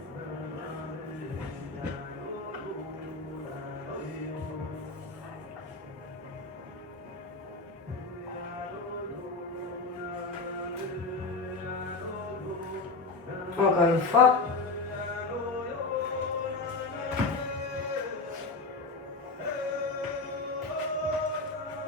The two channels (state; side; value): quieter; right; 3.8 dB